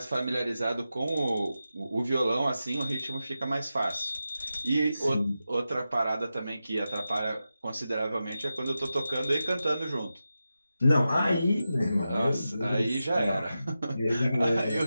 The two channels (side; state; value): both; inverted; correlation -0.91